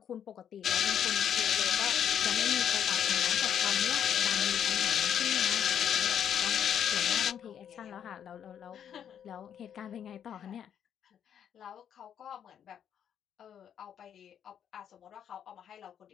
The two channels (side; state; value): right; quieter; 9.0 dB